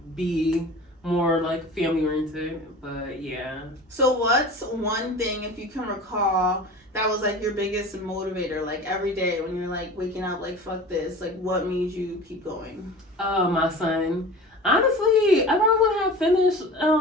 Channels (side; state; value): both; normal; correlation 0.37